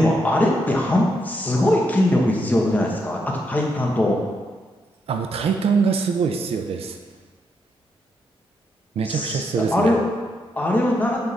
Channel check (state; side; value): normal; both; correlation 0.80